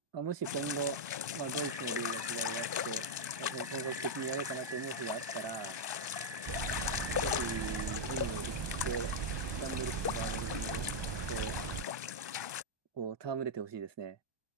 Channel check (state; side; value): late; left; 1.2 ms